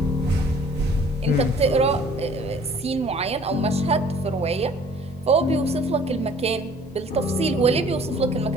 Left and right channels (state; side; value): normal; both; correlation 0.53